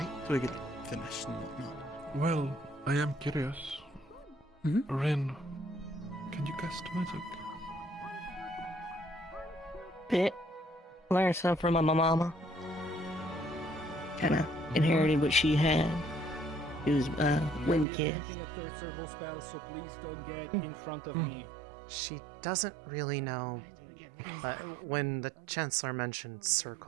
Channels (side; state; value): left; drops out; at 17.9 s